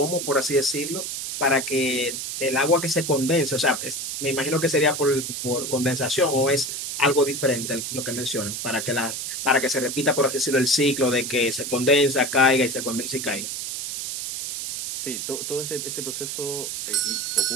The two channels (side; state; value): right; noise; hiss, 5 dB below the sound